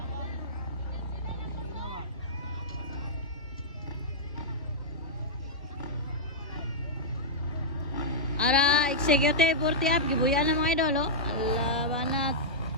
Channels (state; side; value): normal; both; correlation -0.09